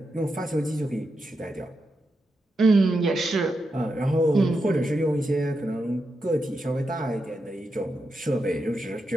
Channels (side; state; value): both; normal; correlation 0.86